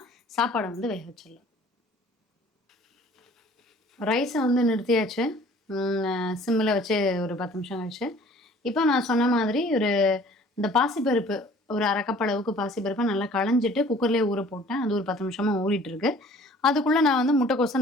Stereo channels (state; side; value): normal; both; correlation 0.51